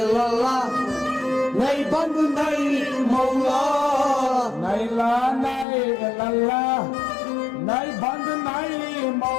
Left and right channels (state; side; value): drops out; right; at 5.7 s